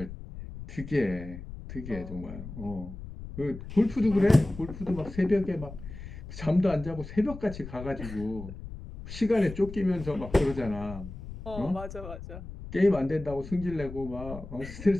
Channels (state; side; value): noise; left; rumble, 11 dB below the sound